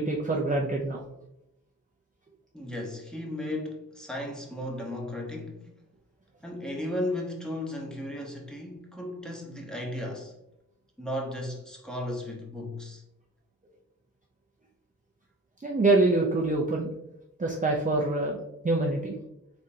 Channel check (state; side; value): normal; both; correlation 0.43